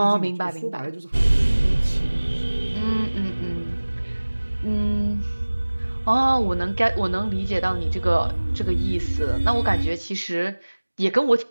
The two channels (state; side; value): inverted; both; correlation -1.00